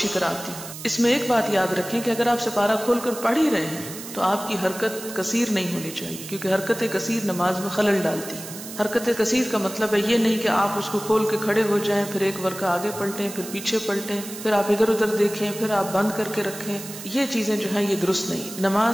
طرح آتی. اس میں ایک بات یاد رکھیں کہ اگر آپ سپارہ کھول کر پڑھ ہی رہے ہیں تو آپ کی حرکت کثیر نہیں ہونی چاہیے، کیونکہ حرکت کثیر نماز میں خلل ڈالتی. حرکت کثیر کا مطلب ہے یہ نہیں کہ آپ اس کو کھول کے کھڑے ہو جائیں، پھر ایک ورقہ آگے پلٹیں، پھر پیچھے پلٹیں، پھر آپ ادھر ادھر دیکھیں، پھر آپ بند کر کے رکھیں. یہ چیزیں جو ہیں یہ درست نہیں.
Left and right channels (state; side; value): noise; right; hiss, 12 dB below the sound